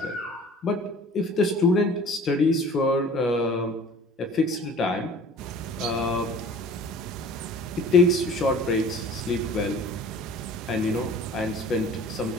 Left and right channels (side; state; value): both; normal; correlation 0.46